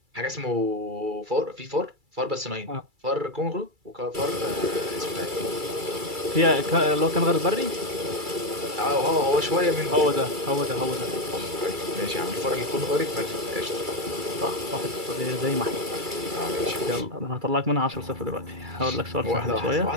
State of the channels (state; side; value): late; left; 2.3 ms